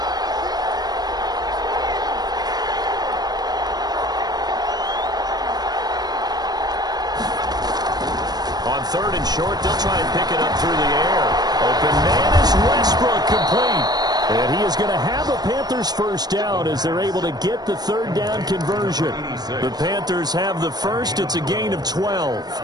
3rd and short. They'll try and pick it up through the air. Open man is Westbrook, complete. And he is going to have a Panthers first down as they're able to get the 3rd down conversion. The Panthers have the first. It's a gain of 12.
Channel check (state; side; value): late; left; 0.19 ms